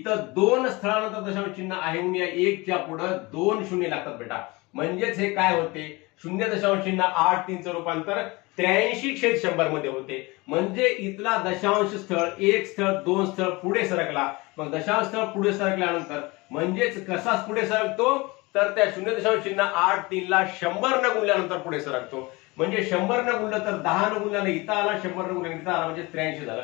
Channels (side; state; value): right; quieter; 24.1 dB